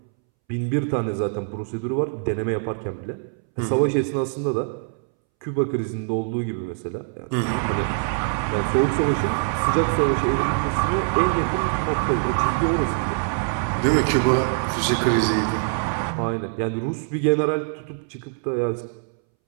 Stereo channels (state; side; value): silent; left; 63 dB below the other